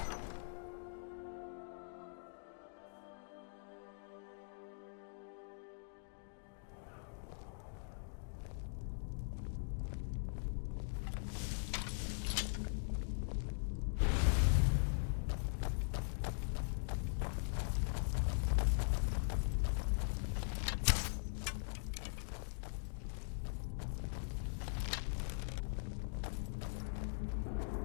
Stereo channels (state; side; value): silent; right; digital silence